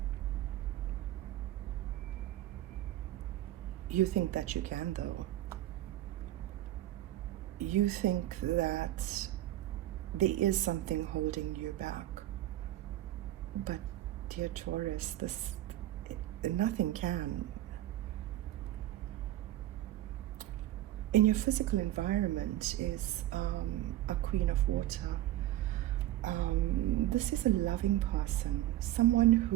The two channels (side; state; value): left; quieter; 14.2 dB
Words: You think that you can, though. You think that there is something holding you back. But, dear Taurus, nothing can. In your physical environment is a Queen of Water. This is a loving person, someone